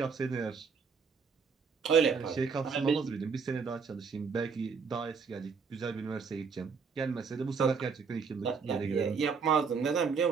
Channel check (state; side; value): quieter; left; 5.5 dB